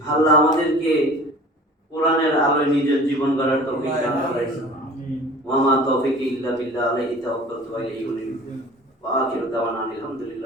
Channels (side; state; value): both; normal; correlation 0.43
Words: আল্লাহ আমাদেরকে কোরআনের আলোয় নিজের জীবন গড়ার তৌফিক দান করেন। ওয়া মা তৌফিকি ইল্লা বিল্লাহ, আলাইহি তাওয়াক্কালতু ওয়া ইলাইহি উনীব। ওয়া আখিরু দাওয়ানা